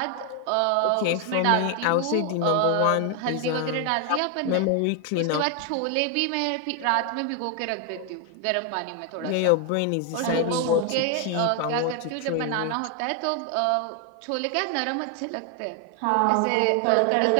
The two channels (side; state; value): both; different; correlation 0.01